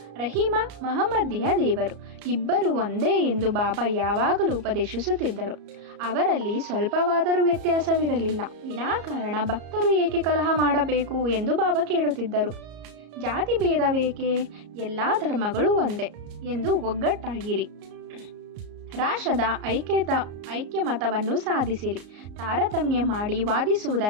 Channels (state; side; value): late; left; 34 ms